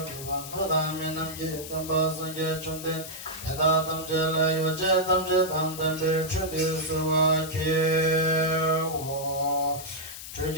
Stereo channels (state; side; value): noise; left; hiss, 11 dB below the sound